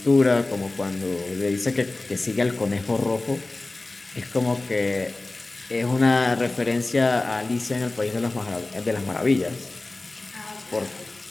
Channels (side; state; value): right; quieter; 3.0 dB